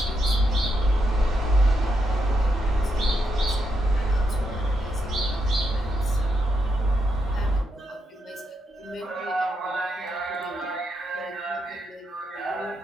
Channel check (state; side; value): normal; both; correlation 0.82